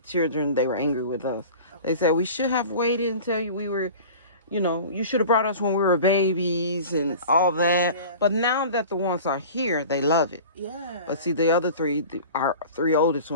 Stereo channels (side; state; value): both; inverted; correlation -0.39